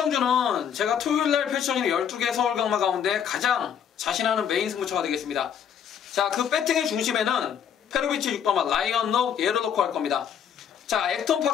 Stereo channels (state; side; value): quieter; right; 8.3 dB